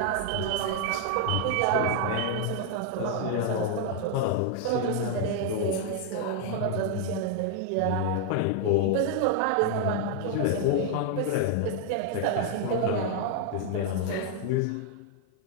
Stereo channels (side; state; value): both; different; correlation 0.00